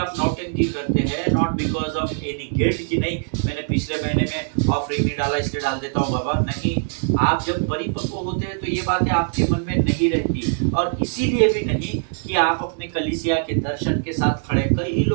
नौटंकी करते हैं, not because of any guilt कि नहीं मैंने पिछले महीने में ऑफरिंग नहीं डाला इसलिए डाल देता हूँ बाबा। नहीं, आप जब परिपक्व होते हैं तो ये बातें आपके मन में नहीं रहती, और इसीलिए भी नहीं कि आप अपने कलीसिया के दर्शन के साथ खड़े। कई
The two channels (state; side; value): silent; left; 64 dB below the other